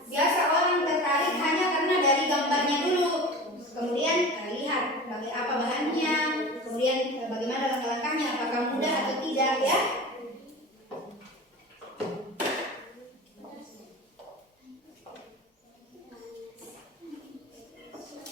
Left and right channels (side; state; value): both; normal; correlation 0.34